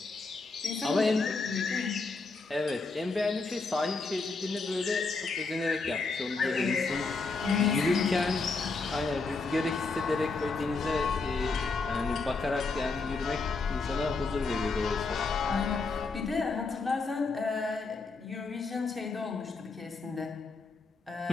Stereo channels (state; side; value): quieter; right; 4.0 dB